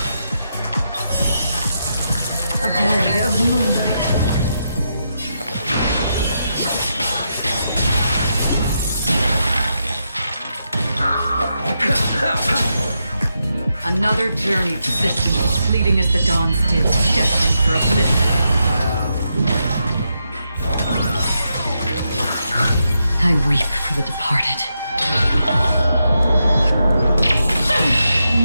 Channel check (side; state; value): both; inverted; correlation -0.84